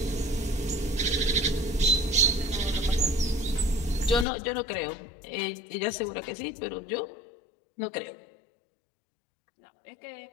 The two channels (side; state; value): right; drops out; at 4.2 s